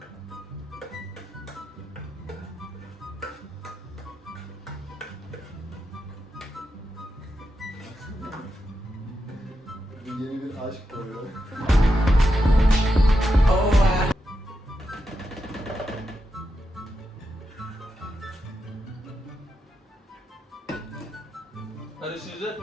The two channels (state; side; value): normal; both; correlation 0.86